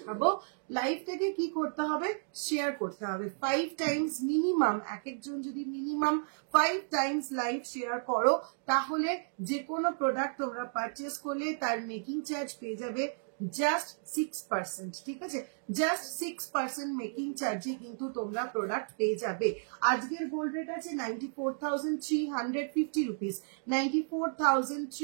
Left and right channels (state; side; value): silent; left; digital silence